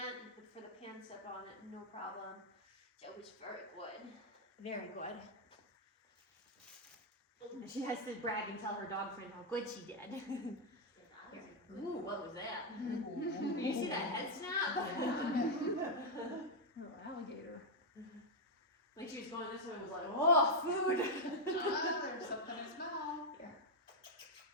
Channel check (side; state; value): both; normal; correlation -0.01